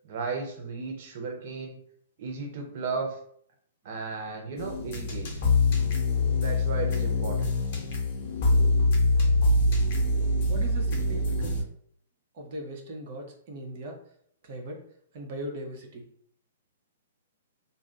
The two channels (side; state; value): both; inverted; correlation -0.68